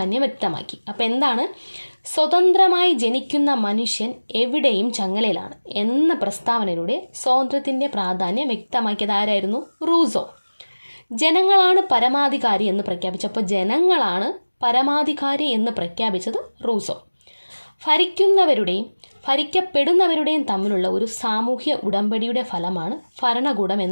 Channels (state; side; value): inverted; both; correlation -1.00